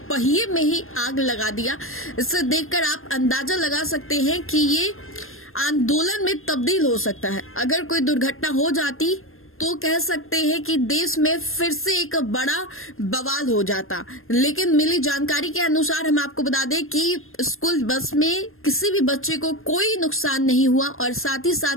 पहिए में ही आग लगा दिया, इससे देखकर आप अंदाजा लगा सकते हैं कि ये आंदोलन में तब्दील हो सकता है। अगर कोई दुर्घटना हो जाती तो कह सकते हैं कि देश में फिर से एक बड़ा बवाल हो जाता। लेकिन मिली जानकारी के अनुसार हम आपको बता दें कि स्कूल बस में किसी भी बच्चे को कोई नुकसान नहीं हुआ और साथ ही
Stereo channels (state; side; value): late; right; 0.60 ms